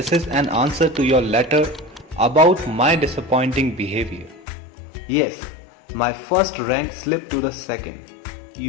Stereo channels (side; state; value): right; drops out; at 4.5 s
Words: is an answer to your letter about my disappointing behavior. Yes, my first rank slipped to the second.